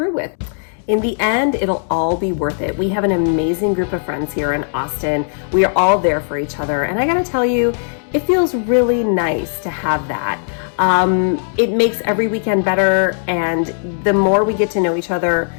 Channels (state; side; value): silent; right; digital silence